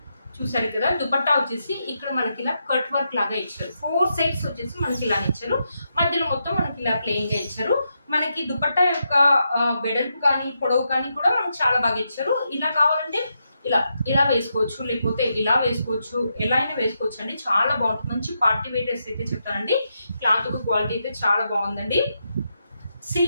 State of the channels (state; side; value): inverted; both; correlation -0.84